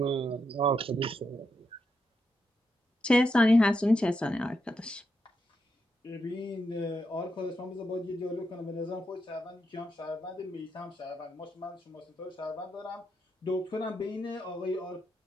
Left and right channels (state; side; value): normal; both; correlation 0.83